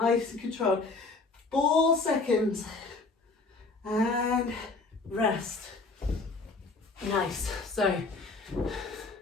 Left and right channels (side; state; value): right; quieter; 3.8 dB